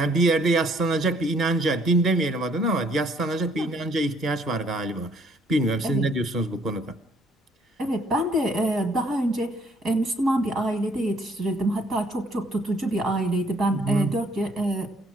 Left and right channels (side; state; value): both; normal; correlation 0.64